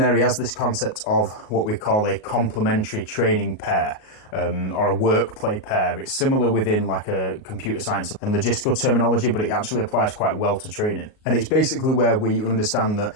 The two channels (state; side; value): late; right; 38 ms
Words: he has this concept of what we call a complementary training pair, or a work play pair. It's similar within like a computer science and logistical terminology, but it actually applies quite well to training. And it's basically where we understand that